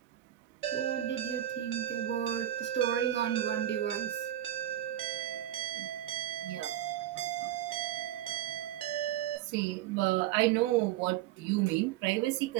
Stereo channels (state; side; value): quieter; left; 12.5 dB